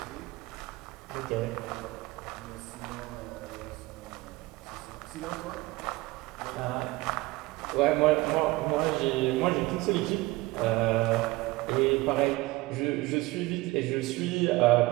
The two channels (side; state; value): left; quieter; 20.9 dB